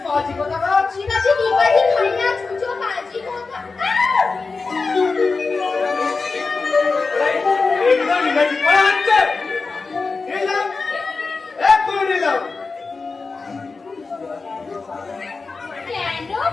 শিবাজি ডিগবাজি খাইয়া ছুঁচো বাজি কথা। কেন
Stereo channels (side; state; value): right; quieter; 4.2 dB